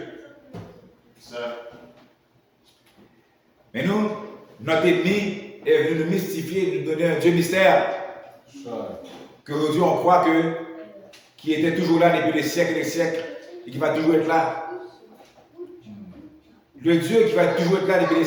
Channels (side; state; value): both; identical; correlation 1.00